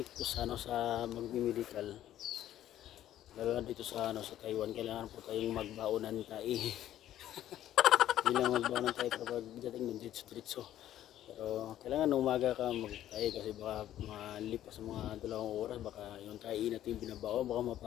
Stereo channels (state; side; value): quieter; right; 12.4 dB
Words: po sa magme-medical. Lalo na dito sa Taiwan, kailangan po tayong magbaonan tayo. Hindi lang magbaonan tayo kapag dating ng diretso. Pero kailangan umaga ka magtayo kasi baka malipas sa mga 2 oras, baka yung tayo natin binabao, baka